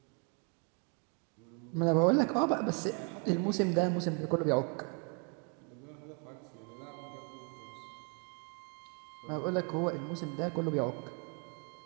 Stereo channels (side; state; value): left; quieter; 36.8 dB